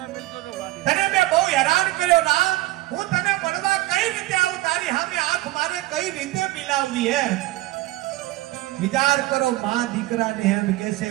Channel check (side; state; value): left; quieter; 17.9 dB